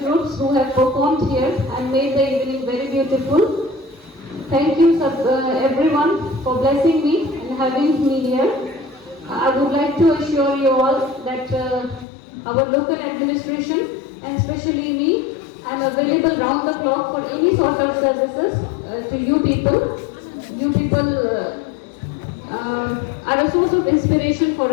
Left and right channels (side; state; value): right; drops out; at 12.1 s